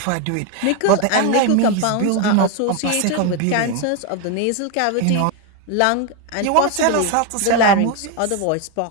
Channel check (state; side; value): different; both; correlation 0.01